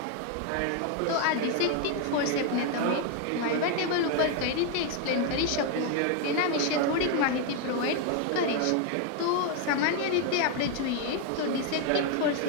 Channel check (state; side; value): different; both; correlation 0.01